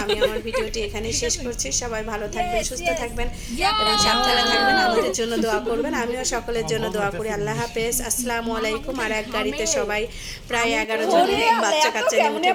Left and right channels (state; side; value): identical; both; correlation 1.00